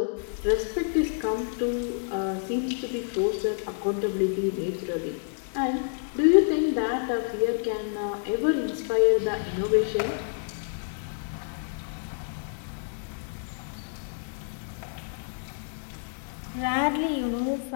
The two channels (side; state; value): right; silent; 59 dB below the other